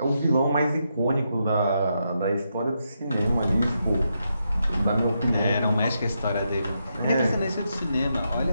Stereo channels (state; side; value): inverted; both; correlation -0.83